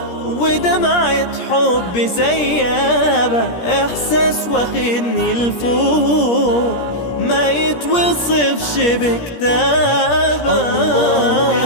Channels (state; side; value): late; right; 17 ms